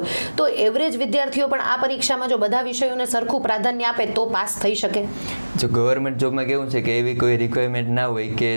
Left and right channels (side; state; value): both; inverted; correlation -1.00